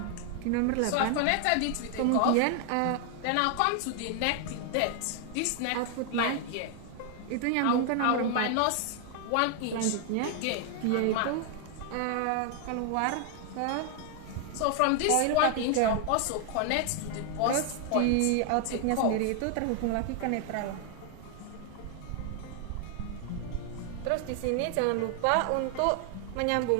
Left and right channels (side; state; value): both; different; correlation 0.00